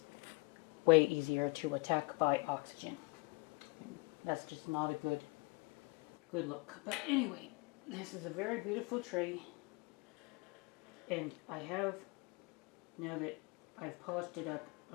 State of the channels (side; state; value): right; quieter; 28.1 dB